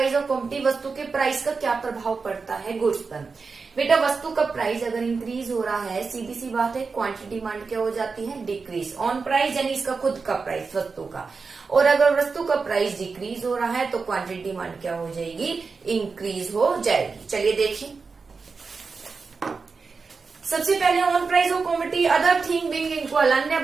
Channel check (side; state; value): left; quieter; 4.7 dB